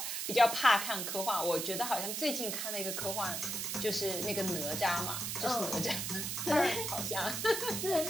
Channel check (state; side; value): noise; right; hiss, 2 dB below the sound